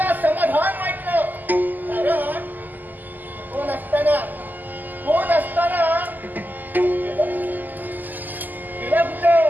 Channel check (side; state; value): left; late; 0.085 ms